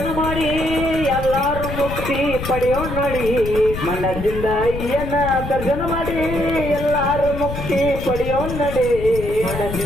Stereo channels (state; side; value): noise; left; rumble, 7 dB below the sound